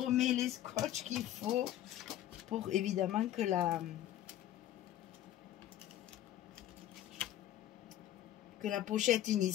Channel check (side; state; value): right; quieter; 12.6 dB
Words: les scotch qu'il faut pour évidemment que la pochette